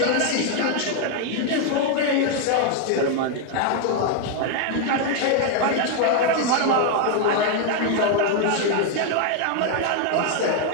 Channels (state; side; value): different; both; correlation 0.00